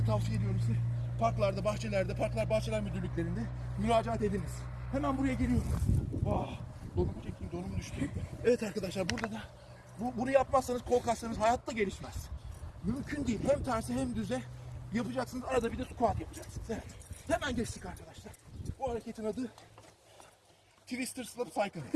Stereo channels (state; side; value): identical; both; correlation 1.00